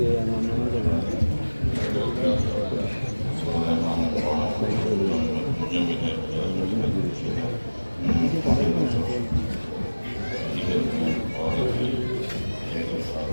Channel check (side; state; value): both; inverted; correlation -1.00